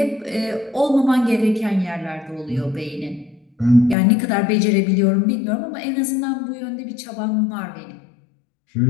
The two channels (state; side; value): drops out; right; at 4.0 s